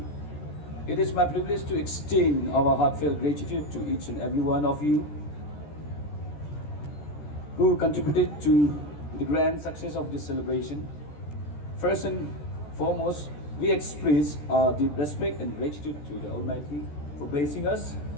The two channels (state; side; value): late; right; 13 ms